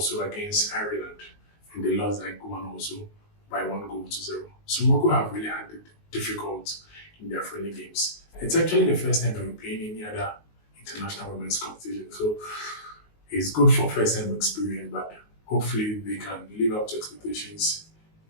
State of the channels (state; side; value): late; right; 19 ms